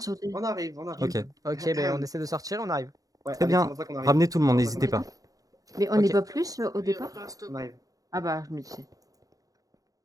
sauter. On arrive, on Ok, arrive. Ok, ben on essaie de sortir, on arrive. Ouais, très allez, bien. c'est pour ça qu'on arrive. Ramenez tout le monde, C'est pour ça n'hésitez qu'on pas. Mais on Ok. n'est pas plus au départ? On arrive. Ah bah, je me disais.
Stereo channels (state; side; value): late; left; 0.17 ms